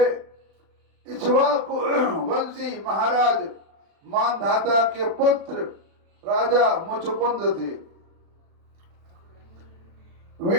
इक्ष्वाकु वंशी महाराज मानधाता के पुत्र राजा मुचकुंद थे।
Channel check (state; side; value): late; left; 36 ms